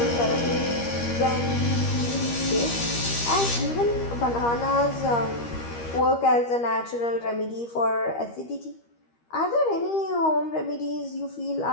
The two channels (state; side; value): late; right; 13 ms